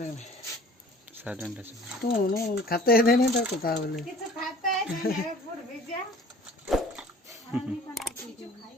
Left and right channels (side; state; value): both; normal; correlation 0.48